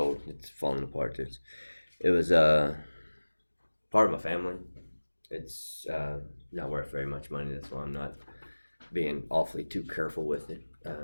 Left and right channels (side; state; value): both; inverted; correlation -1.00